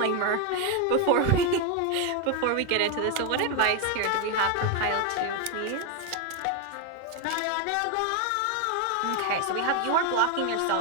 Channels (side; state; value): both; different; correlation 0.01